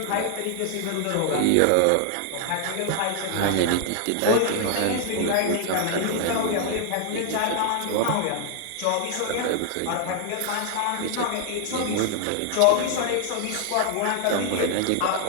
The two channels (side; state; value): both; different; correlation 0.00